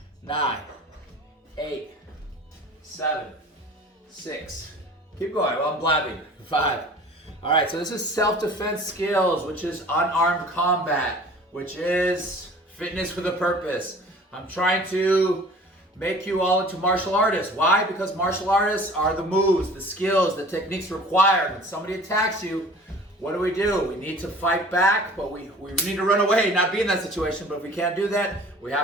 9, 8, 7, 6. Keep going while I'm blabbing. 5. All right, so this is self-defense skills, which is unarmed combat, which is fitness with a purpose. I'm trying to make you all into martial artists. Why? Because martial artists are the moves, the skills, the techniques required. When somebody attacks you, what do? We need to fight back, but we need to run away, not be in that situation. But if we can't do that, we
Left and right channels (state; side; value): normal; both; correlation 0.46